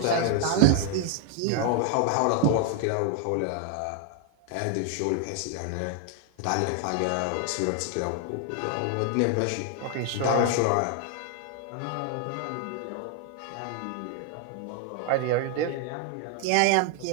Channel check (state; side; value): different; both; correlation 0.00